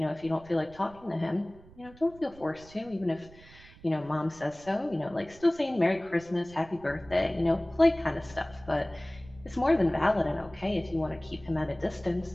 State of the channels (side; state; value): right; noise; rumble, 22 dB below the sound